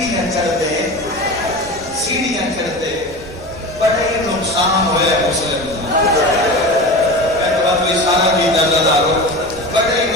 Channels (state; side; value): noise; right; rumble, 18 dB below the sound